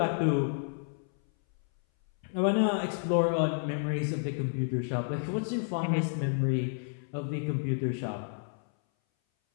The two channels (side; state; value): right; silent; 57 dB below the other